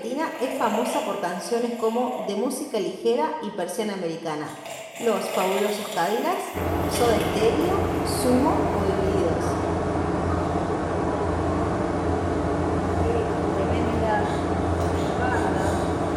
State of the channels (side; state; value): both; identical; correlation 1.00